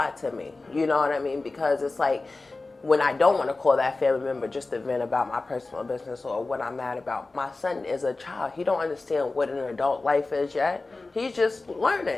to me, you know what I mean? Because it's like, when I don't want to call that family member just to vent about my personal business or what I'm mad about. My son is a child. He don't understand what an adult life is yet. He's just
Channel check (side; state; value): right; quieter; 3.4 dB